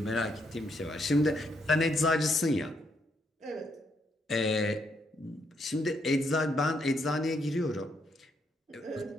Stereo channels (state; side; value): normal; both; correlation 0.75